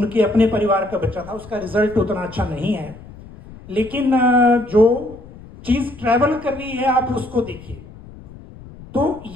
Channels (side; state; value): left; noise; rumble, 18 dB below the sound